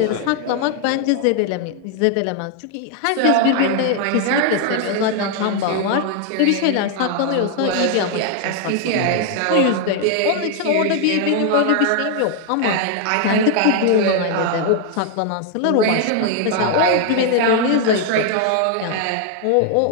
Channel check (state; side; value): different; both; correlation 0.00